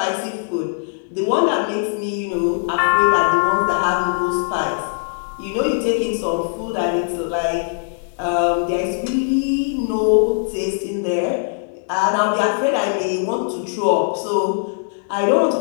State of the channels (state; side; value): silent; right; digital silence